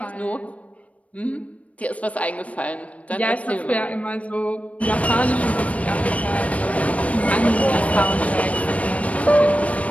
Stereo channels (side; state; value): right; late; 0.066 ms